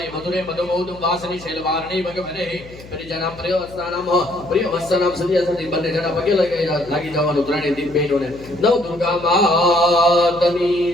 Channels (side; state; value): left; noise; hum, 18 dB below the sound